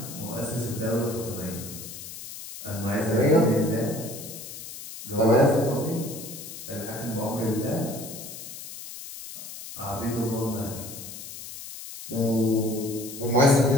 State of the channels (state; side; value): noise; left; hiss, 11 dB below the sound